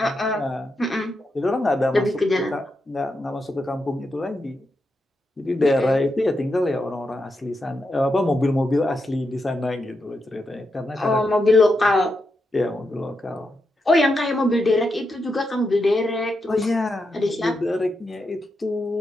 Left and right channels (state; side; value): normal; both; correlation 0.85